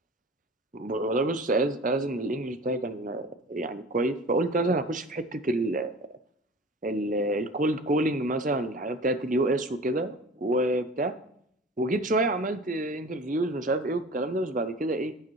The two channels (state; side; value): normal; both; correlation 0.40